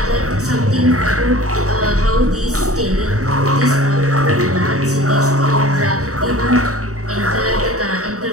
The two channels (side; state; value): left; late; 0.65 ms